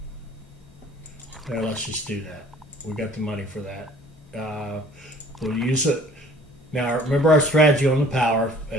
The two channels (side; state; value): both; normal; correlation 0.53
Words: There, let's just do that. We got the money for that. We'll use it. Now, remember our strategy on the power.